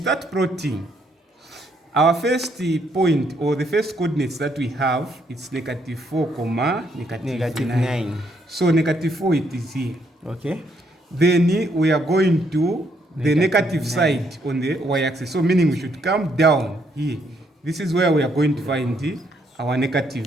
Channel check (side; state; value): both; normal; correlation 0.72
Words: plotting. Our first point, or the first coordinates that we have, it's -4, negative 9. So -4, it is here. Okay. Then we are going to the negative 9 side on the y-axis. So meaning we should come down here. This is where we are going to find our